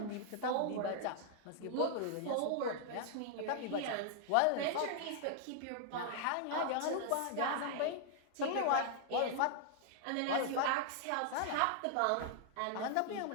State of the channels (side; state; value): both; different; correlation 0.00